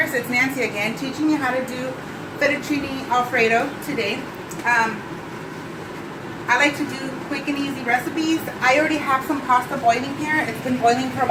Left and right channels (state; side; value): identical; both; correlation 1.00